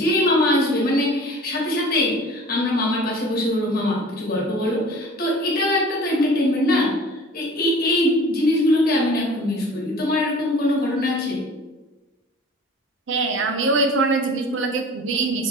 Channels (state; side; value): normal; both; correlation 0.44